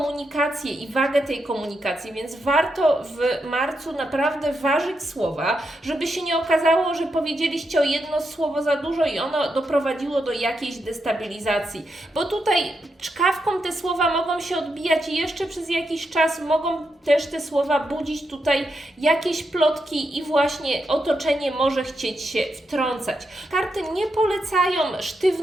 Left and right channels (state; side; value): normal; both; correlation 0.84